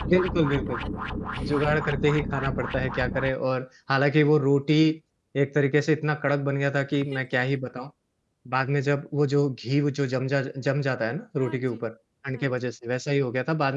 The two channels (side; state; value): both; identical; correlation 1.00